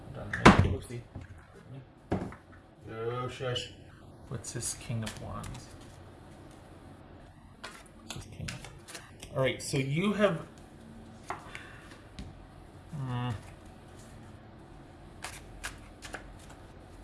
Oopsie. Oh, shush. What's this? King of Wands. What's this King of... Alright, so you have...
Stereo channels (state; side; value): identical; both; correlation 1.00